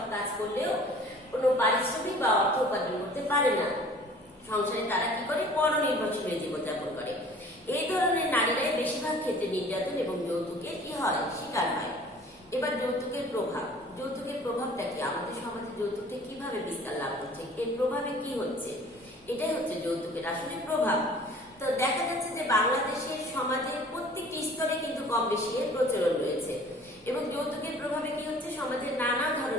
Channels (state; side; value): normal; both; correlation 0.49